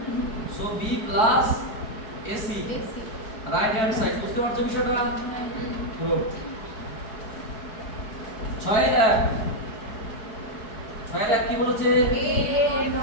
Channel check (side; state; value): right; late; 4.7 ms